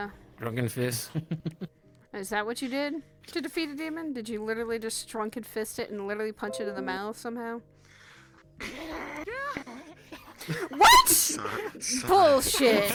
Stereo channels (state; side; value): identical; both; correlation 1.00